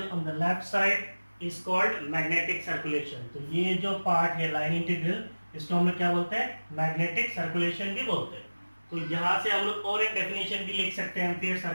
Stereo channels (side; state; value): both; inverted; correlation -1.00